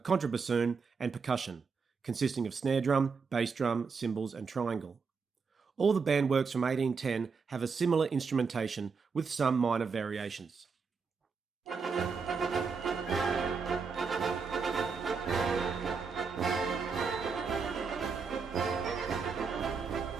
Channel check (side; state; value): left; quieter; 5.2 dB